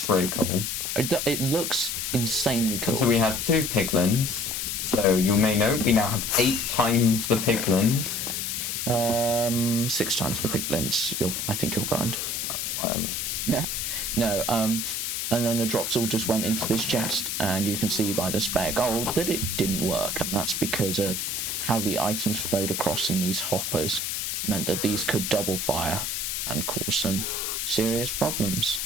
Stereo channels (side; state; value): left; noise; hiss, 2 dB below the sound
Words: really cool. It looks insanely cool. So we had 2 piglins. So you may know we now have 8 times the piglins. 6 times the piglins. I think you'll find. Whatever. Yeah. No. And then the drops all just went into this chest, and you can see by the spare gold that it didn't work, and that's because of how the items flowed across in these hoppers. Meant that these could double fire and cause some serious problems.